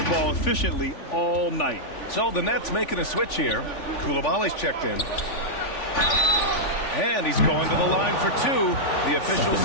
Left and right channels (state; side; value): late; right; 3.5 ms